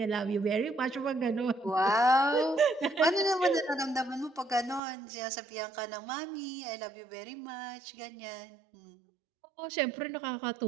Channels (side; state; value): left; drops out; at 4.8 s